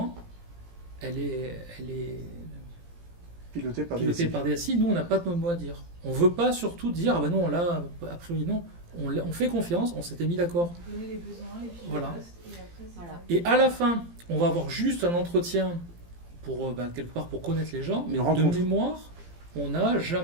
elle est pilotée par DSI. Nous, on n'a pas de mot à dire. On ne veut pas surtout dire, non, là, a priori, non. On fait confiance, on s'était mis d'accord. Donner les besoins, les fiches voilà. de poste, et après, Et à la fin, on va avoir juste un entretien pour, quelque part, pour connaître les gens, mais de mémoire, on n'a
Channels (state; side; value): late; left; 17 ms